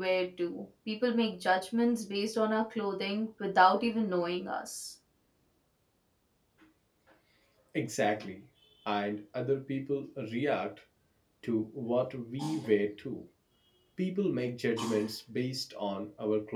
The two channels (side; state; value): both; identical; correlation 1.00